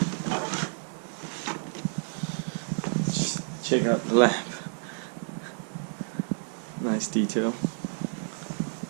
Check out the lamp. Nice detail.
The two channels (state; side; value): silent; left; digital silence